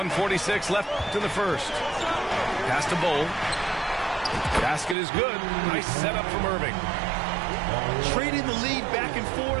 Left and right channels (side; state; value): left; drops out; at 5.0 s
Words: left in the first. Pass to Bull. Basket is good. Nice setup from Irving. Trading the lead back and